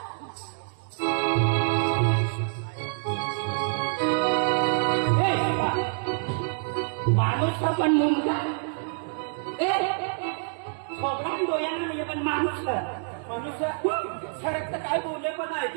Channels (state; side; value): silent; left; digital silence